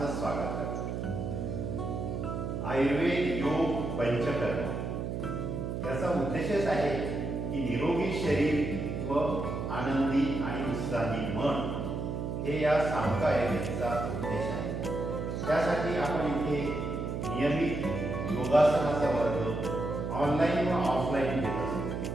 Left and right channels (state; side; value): noise; right; hum, 3 dB below the sound